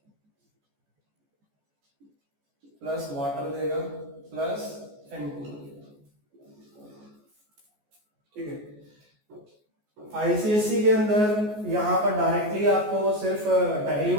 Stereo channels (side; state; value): left; late; 14 ms